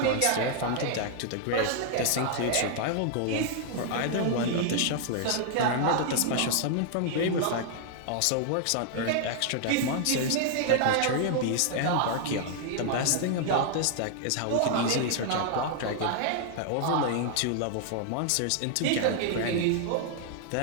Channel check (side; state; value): both; different; correlation 0.00